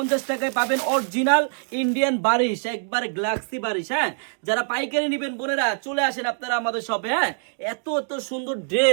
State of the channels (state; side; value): silent; left; digital silence